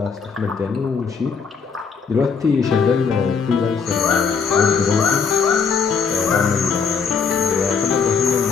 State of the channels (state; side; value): quieter; right; 5.7 dB